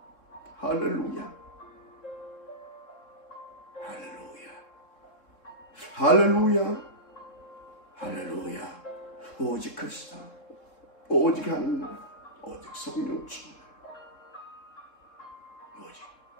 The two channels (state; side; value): late; right; 3.7 ms